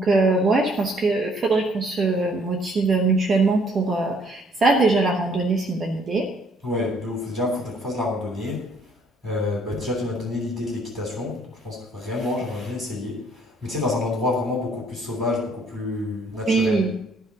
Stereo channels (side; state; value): both; normal; correlation 0.64